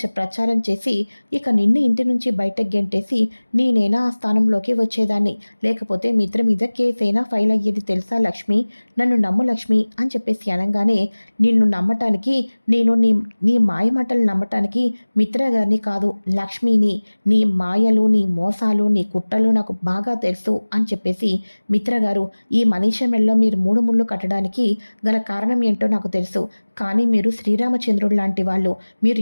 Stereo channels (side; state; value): both; inverted; correlation -1.00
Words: ప్రచారం చేసి ఇక నిన్ను ఇంటి నుంచి బయటకు గెంటేసి నేనైనా ఆ స్థానంలోకి వచ్చేదాన్ని. లేకపోతే మిత్ర మీద కేసైనా ఫైల్ అయ్యేది తెలుసా లక్ష్మి? నన్ను నమ్ము లక్ష్మి అని చెప్పేసి అనగానే, నిన్ను నమ్మటానికి నేను నీ నీ మాయమాటలు నమ్మటానికి మిత్ర గారిని కాదు, లక్ష్మిని. నీ మాయలు, నీ మోసాలు, నీ కుట్రలు నాకు బాగా తెలుసు అని చెప్పేసి, మిత్ర గారు, ఈ మనీష మెడలో మీరు 3 ముళ్ళు కట్టడానికి గల కారణం ఏంటో నాకు తెలుసు. కానీ మీరు శ్రీరామచంద్రుడు లాంటి వాళ్ళు. మీరు